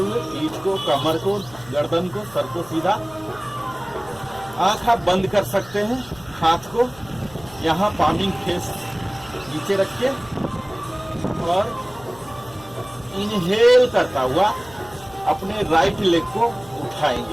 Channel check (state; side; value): noise; left; hum, 22 dB below the sound